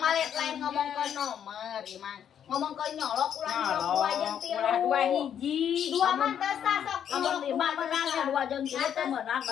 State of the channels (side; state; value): right; quieter; 9.0 dB